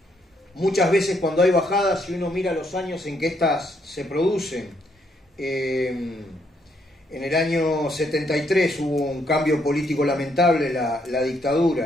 Muchas veces cuando hay bajadas, si uno mira los años en que estas se producen, en el año 73 hubo un cambio político lamentable, la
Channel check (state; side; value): normal; both; correlation 0.73